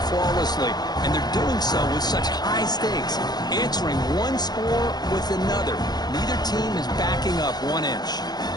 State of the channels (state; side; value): late; right; 0.20 ms